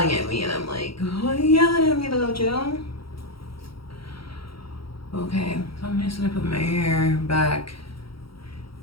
at me and I'm like, why are you yelling at me though, Joe? Okay, so I'm just gonna put my hair back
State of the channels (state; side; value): late; right; 0.74 ms